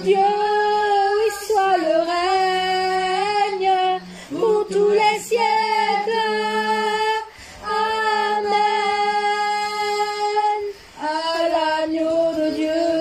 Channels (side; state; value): both; identical; correlation 1.00